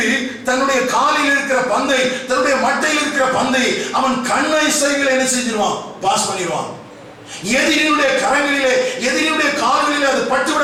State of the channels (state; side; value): identical; both; correlation 1.00